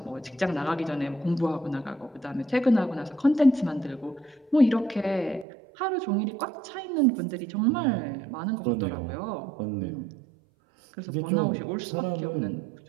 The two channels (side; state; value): left; drops out; at 5.5 s